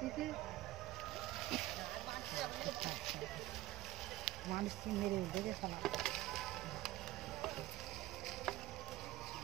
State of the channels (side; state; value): left; quieter; 16.2 dB